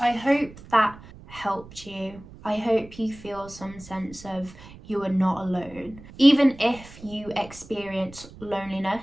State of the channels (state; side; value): noise; right; rumble, 19 dB below the sound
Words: hope that helped you. I hope you feel some sense of you are not alone. Even if you experience